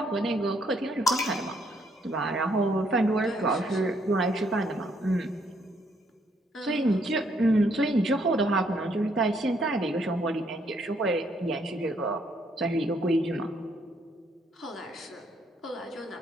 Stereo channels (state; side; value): normal; both; correlation 0.70